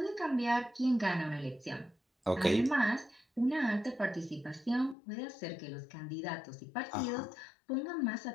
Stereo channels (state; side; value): drops out; right; at 5.0 s